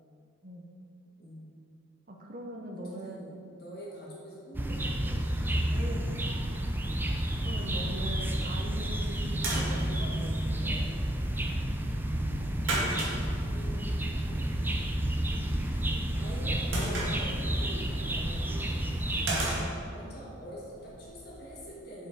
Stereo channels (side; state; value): both; normal; correlation 0.73